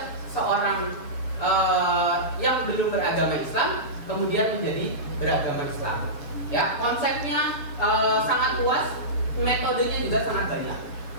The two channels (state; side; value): late; right; 7.3 ms